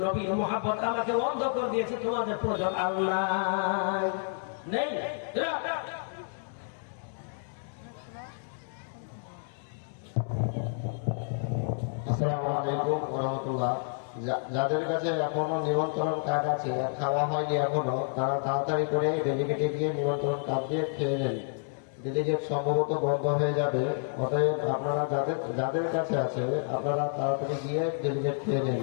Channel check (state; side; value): silent; right; digital silence